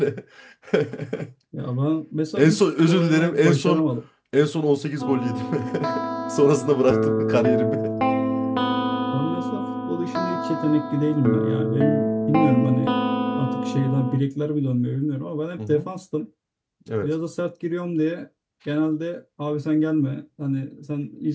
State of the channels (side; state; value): both; identical; correlation 1.00